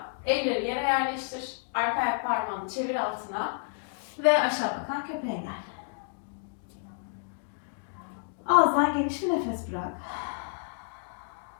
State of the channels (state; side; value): silent; right; digital silence